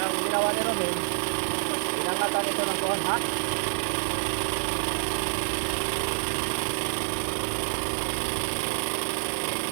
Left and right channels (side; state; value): left; silent; 60 dB below the other